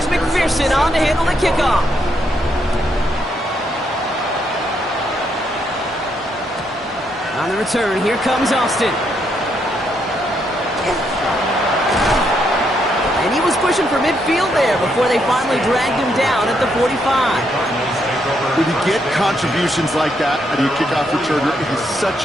McPherson on to handle the kickoff. On the return, here comes Austin. And he was pushing for midfield there before they finally dragged him down at the 45. When you get contributions like that out of your kickoff returner, it is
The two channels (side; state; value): both; normal; correlation 0.76